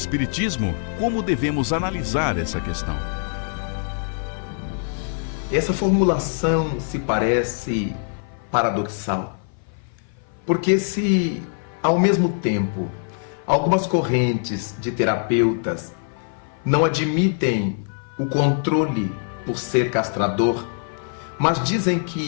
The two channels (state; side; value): silent; right; 56 dB below the other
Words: como devemos analisar essa questão? Essa formulação se parece paradoxal, porque se, ao mesmo tempo, algumas correntes de terapeutas não admitem o controle por ser castrador, mas dizem